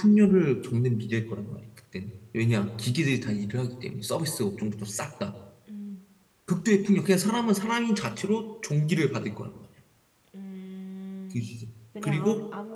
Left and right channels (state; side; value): identical; both; correlation 1.00